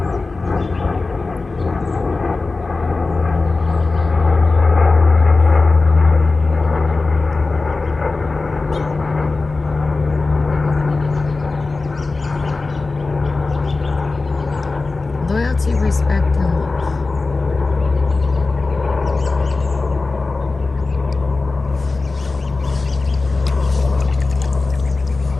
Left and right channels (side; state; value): right; quieter; 3.7 dB